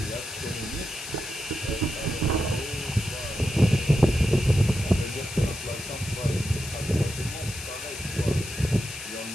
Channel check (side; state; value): left; noise; hiss, 10 dB below the sound